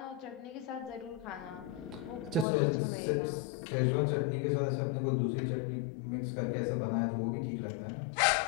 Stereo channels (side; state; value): right; drops out; at 2.5 s